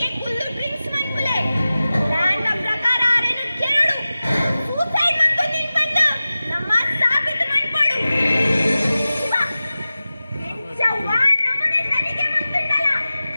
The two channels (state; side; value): inverted; both; correlation -0.96